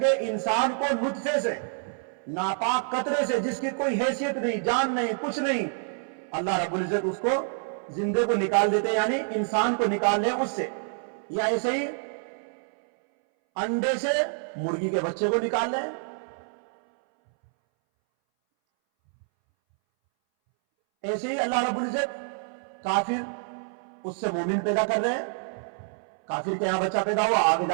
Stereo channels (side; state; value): left; silent; 60 dB below the other